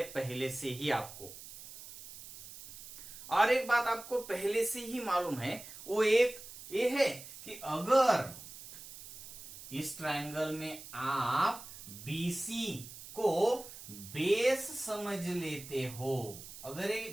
पहले से ही आपको। और एक बात आपको पहले से ही मालूम है, वो एक ये है कि अगर इस ट्रायंगल में आप BC को बेस समझ लेते हो, अगर ये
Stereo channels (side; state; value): right; noise; hiss, 14 dB below the sound